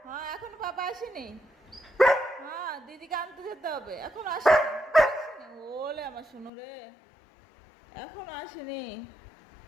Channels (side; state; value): right; drops out; at 6.5 s